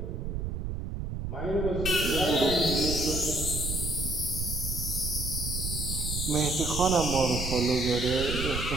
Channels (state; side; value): noise; right; rumble, 4 dB below the sound